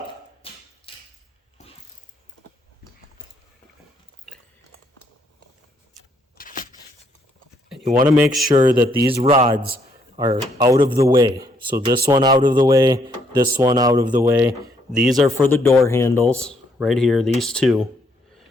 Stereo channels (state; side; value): normal; both; correlation 0.71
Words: And you want to make sure that these rods are out of the way. So this one out of the way, this one out of the way. These are for the door handles, right here, these 2.